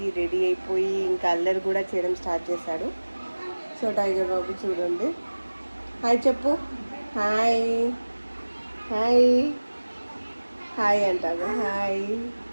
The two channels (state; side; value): inverted; both; correlation -1.00